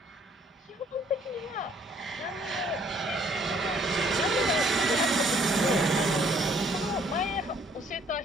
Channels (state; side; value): normal; both; correlation 0.62